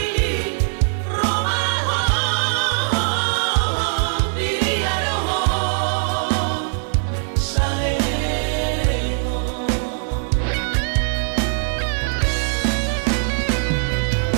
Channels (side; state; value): left; silent; digital silence